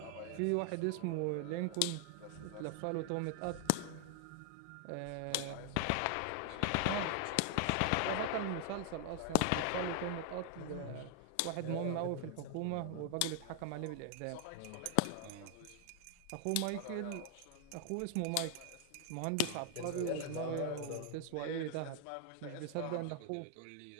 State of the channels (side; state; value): both; different; correlation 0.00